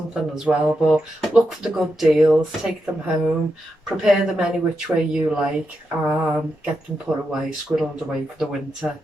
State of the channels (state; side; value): normal; both; correlation 0.86